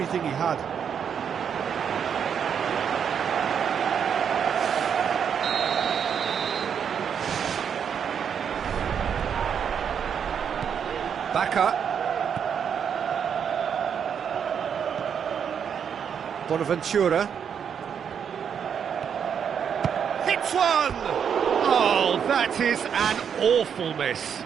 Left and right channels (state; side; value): quieter; left; 7.7 dB